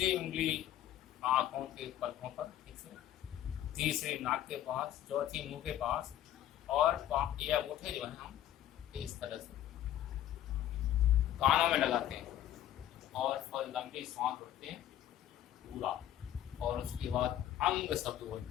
उंगली आंखों के पलकों पर, ठीक से, तीसरी नाक के पास, चौथी मुंह के पास, और ये अंगूठे जो है हम इस तरह से कानों में लगाते हैं और लंबी सांस भरते हैं पूरा, और उसके बाद अंग शब्द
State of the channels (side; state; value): right; quieter; 12.1 dB